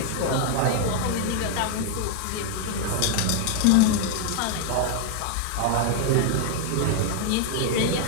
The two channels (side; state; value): both; different; correlation 0.00